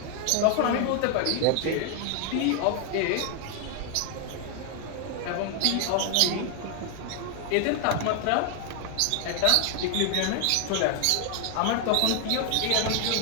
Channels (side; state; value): both; different; correlation 0.00